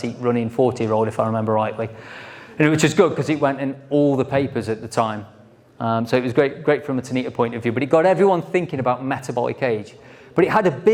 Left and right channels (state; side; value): identical; both; correlation 1.00